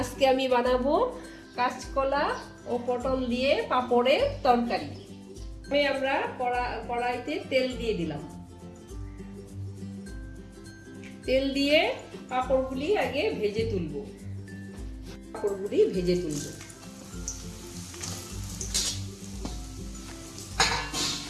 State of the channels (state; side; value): identical; both; correlation 1.00